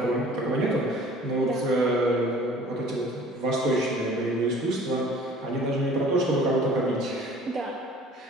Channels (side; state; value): both; normal; correlation 0.49